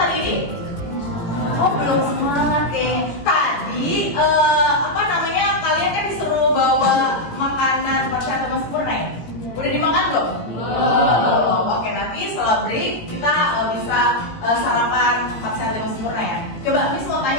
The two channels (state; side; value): late; right; 18 ms